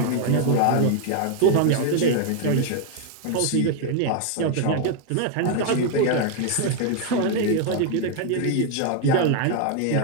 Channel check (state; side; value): different; both; correlation 0.00